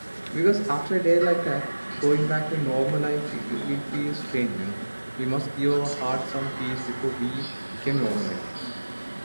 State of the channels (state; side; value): inverted; both; correlation -1.00